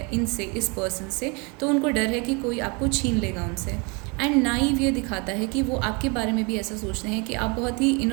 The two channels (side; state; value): left; quieter; 30.9 dB